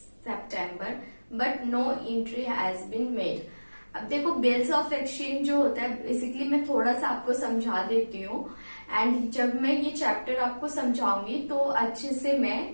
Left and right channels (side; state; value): both; inverted; correlation -1.00